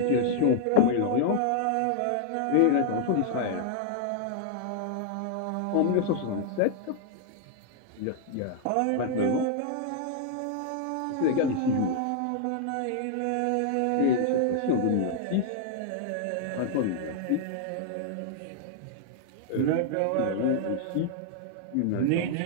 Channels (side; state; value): both; different; correlation -0.01